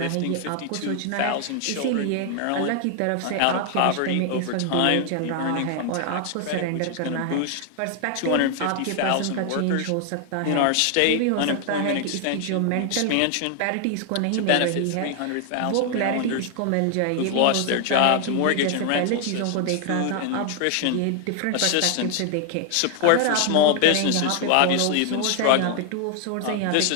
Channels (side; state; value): both; different; correlation 0.00